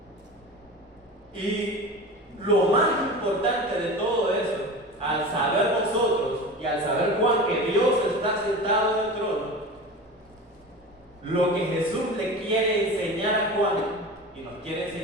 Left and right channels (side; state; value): both; normal; correlation 0.32